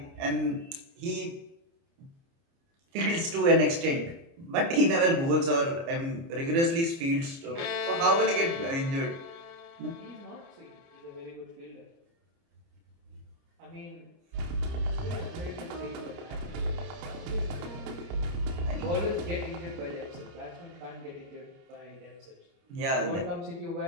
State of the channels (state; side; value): late; left; 29 ms